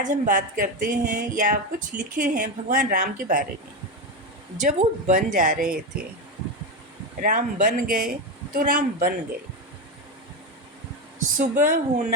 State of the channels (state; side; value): normal; both; correlation 0.13